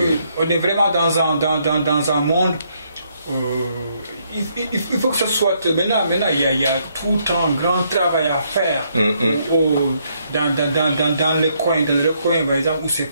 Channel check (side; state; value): both; inverted; correlation -0.73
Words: dans un monde. Il faut que ce soit maintenant il y a tout le temps un grand travail à faire dans les coins par exemple où ces